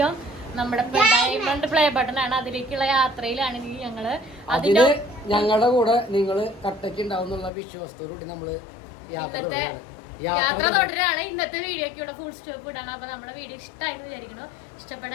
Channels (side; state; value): right; drops out; at 7.5 s